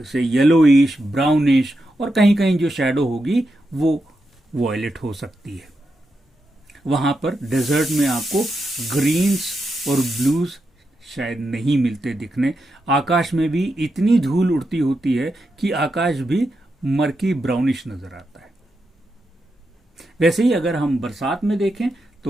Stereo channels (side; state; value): both; normal; correlation 0.86